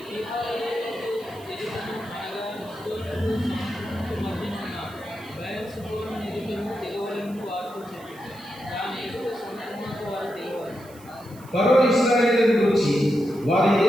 ఫరో ఇశ్రాయేలును గురించి వారి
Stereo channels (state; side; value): noise; right; hiss, 24 dB below the sound